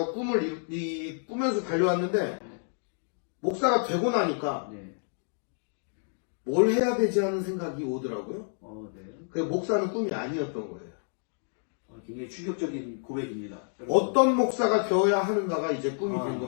꿈을 꾸면서 달려왔는데, 목사가 되고 나니까 네. 뭘 해야 되지 하는 생각이 오더라고요. 네. 그 목사는 꿈이 아니었던 거예요. 굉장히 충격적인 고백입니다. 어떤 목사가 되어야 하는가가 이제 꿈이 된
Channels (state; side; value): silent; right; digital silence